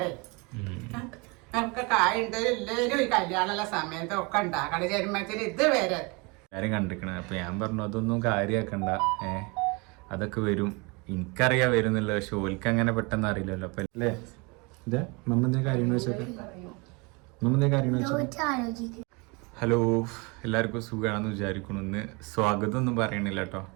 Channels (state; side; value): quieter; left; 28.8 dB